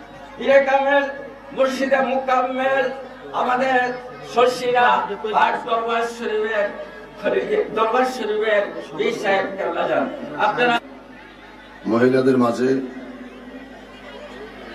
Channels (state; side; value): identical; both; correlation 1.00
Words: পীরে কামেল, মুর্শিদে মুকাম্মেল, আমাদের শর্ষিরা আর দরবার শরীফের পীর সাহেব কেবলাজান। আপনারা মহিলাদের মাঝে